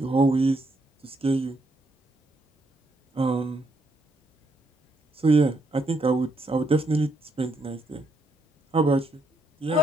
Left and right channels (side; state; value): both; normal; correlation 0.76